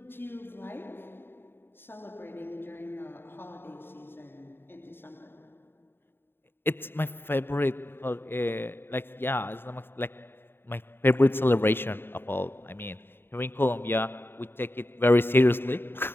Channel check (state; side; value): late; right; 0.11 ms